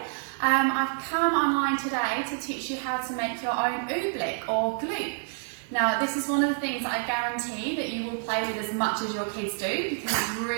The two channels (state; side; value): silent; left; 59 dB below the other